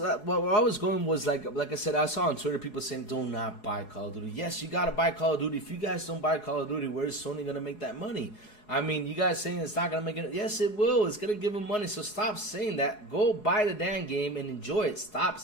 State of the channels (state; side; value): late; right; 4.8 ms